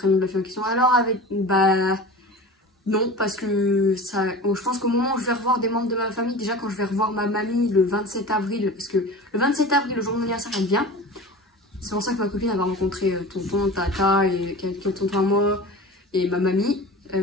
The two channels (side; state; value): both; normal; correlation 0.35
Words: de la fille en question, alors avec bah non, parce que ça, je pense qu'au moment où je vais revoir des membres de ma famille, déjà quand je vais revoir ma mamie le 27 avril, parce que le 27 avril, le jour de mon anniversaire, elle vient. C'est pour ça que ma copine elle va rencontrer tonton, tata et quelques tontons à moi et ma mamie.